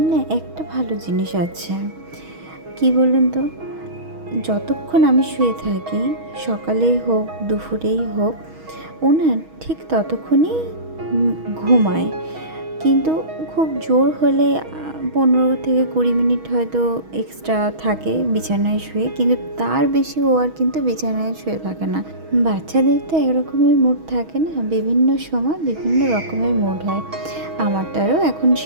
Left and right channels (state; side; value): late; left; 6.3 ms